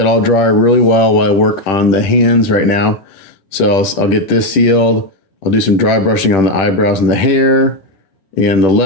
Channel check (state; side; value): late; right; 10 ms